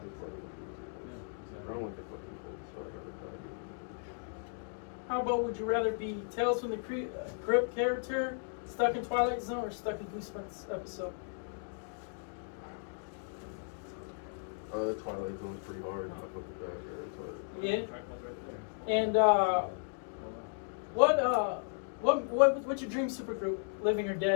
don't like the fucking cold, so I'd rather die. How about would you rather be Tales from the Crypt character, stuck in Twilight Zone, or stuck in Goosebumps episode? The Twilight Zone's pretty hard. I fuck with that. Yeah. And what's your dream supergroup, living or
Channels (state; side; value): silent; right; digital silence